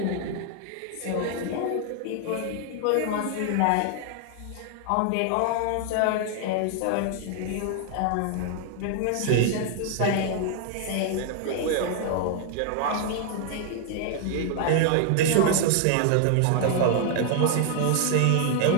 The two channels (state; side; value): different; both; correlation 0.00